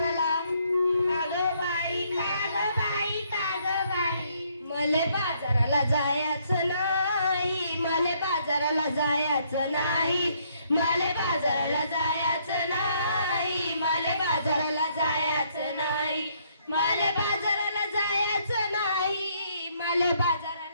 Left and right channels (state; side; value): inverted; both; correlation -0.69